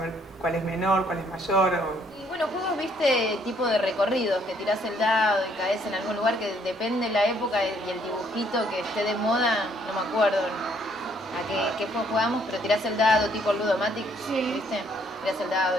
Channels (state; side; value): normal; both; correlation 0.66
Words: cuál es menor, cuál es mayor. Y bueno, juegos, viste, tipo de recorridos, que tirás el dado y caes en algún lugar que depende de la época y el dibujito que esté de moda, no me acuerdo a qué juego jugamos, pero tirás el dado tipo Ludomatic, ¿viste? Tirás el dado